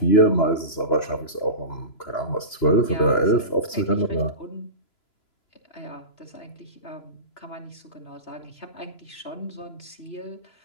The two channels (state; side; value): late; right; 3.0 ms